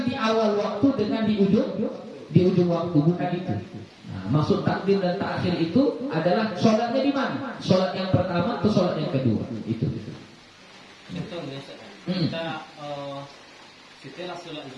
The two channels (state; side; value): identical; both; correlation 1.00